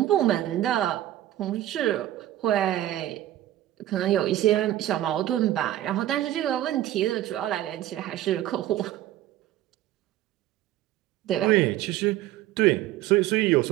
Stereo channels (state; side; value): quieter; left; 13.8 dB